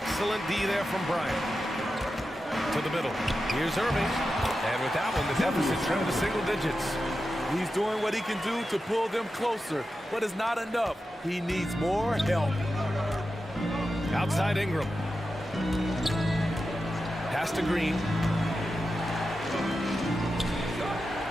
D there from Bryant. To the middle. Here's Irving. And with that one, the deficit trimmed to single digits. He's doing what he can do to pull them closer, but it's not enough. He needs more help. Outside Ingram. Pass to Green.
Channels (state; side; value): normal; both; correlation 0.91